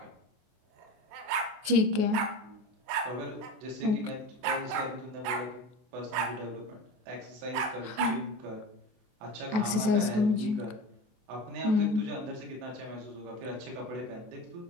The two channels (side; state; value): left; late; 23 ms